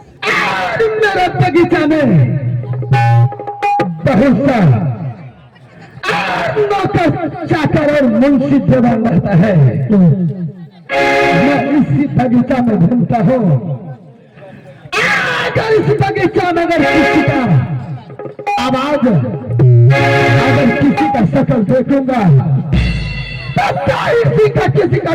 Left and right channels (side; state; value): both; identical; correlation 1.00